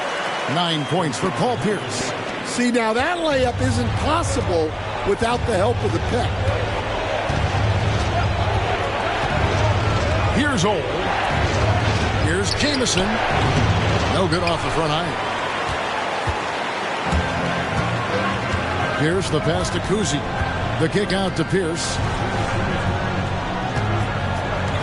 9 points for Paul Pierce. See, now that layup isn't possible without the help of the pick. Here's Old. Here's Jamison. No good off the front iron. Pierce, the pass to Cousy. The kick out to Pierce.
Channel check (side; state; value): both; identical; correlation 1.00